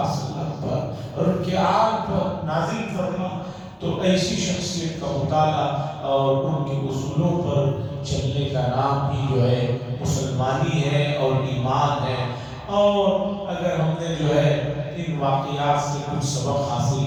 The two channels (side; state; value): both; identical; correlation 1.00